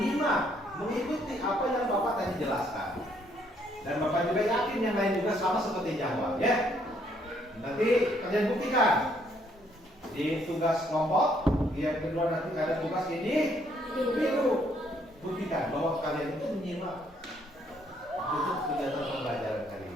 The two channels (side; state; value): both; normal; correlation 0.68